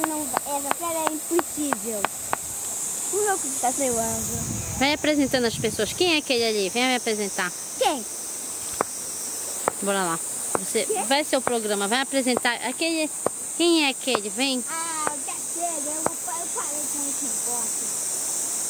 é impossível. O louco que tá voando. Vai apresentando as pessoas. Quem é aquele ali? Vem me apresentar. Quem? Bora lá. Você vai ser o programa, vai apresentar aquele. Quem é aquele? Vem. Ah, já chega, eu parei com esse negócio.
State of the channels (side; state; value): both; identical; correlation 1.00